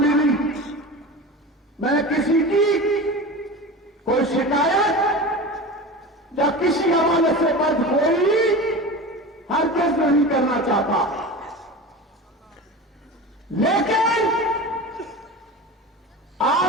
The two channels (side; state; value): both; normal; correlation 0.30